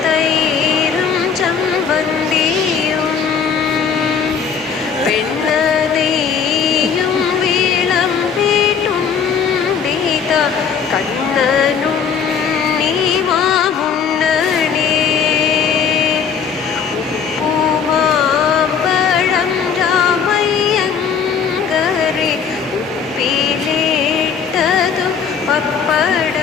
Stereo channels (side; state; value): right; quieter; 6.7 dB